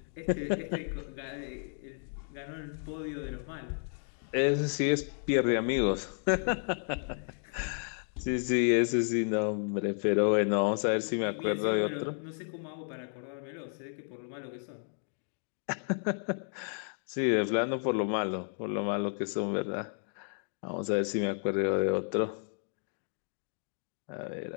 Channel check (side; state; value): right; silent; 56 dB below the other